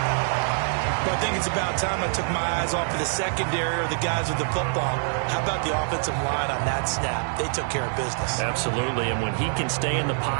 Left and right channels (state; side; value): silent; left; 62 dB below the other